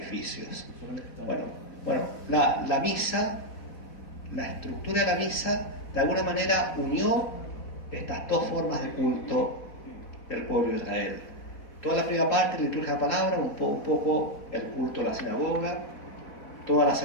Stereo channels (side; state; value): right; late; 3.8 ms